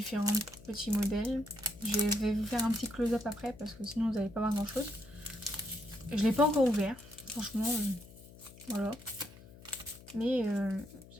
petits modèles. Je vais vous faire un petit close-up après parce que sinon vous n'allez pas voir grand chose. Je ne l'ai pas encore ouvert, franchement, voilà. Mais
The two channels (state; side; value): noise; left; hum, 20 dB below the sound